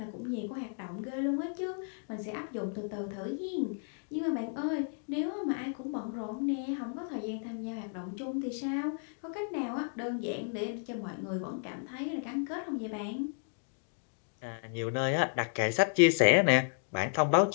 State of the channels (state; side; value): silent; right; digital silence